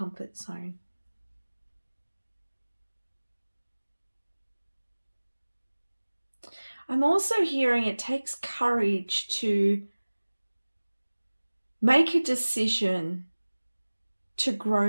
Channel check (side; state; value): both; inverted; correlation -1.00